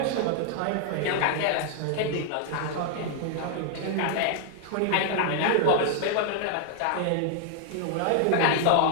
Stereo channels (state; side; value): different; both; correlation 0.00